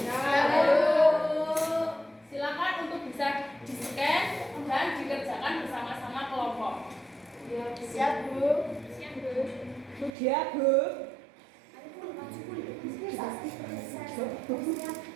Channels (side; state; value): left; drops out; at 10.1 s